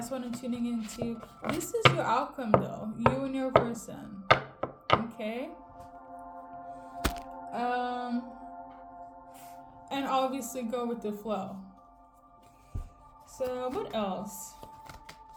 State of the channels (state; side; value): identical; both; correlation 1.00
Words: what I'm tuning into. This is your outcome, though. You and your person. Okay? And obviously go with the flow. So, what else?